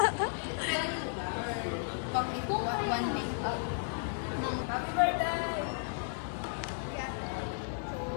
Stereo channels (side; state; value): right; silent; digital silence